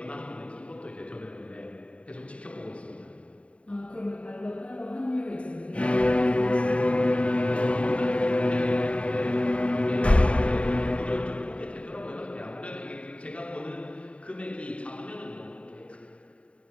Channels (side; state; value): right; late; 0.063 ms